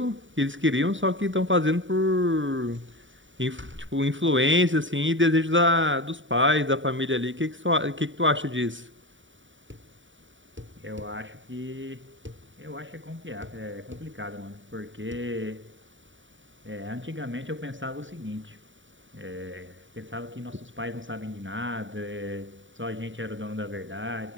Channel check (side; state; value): left; late; 0.56 ms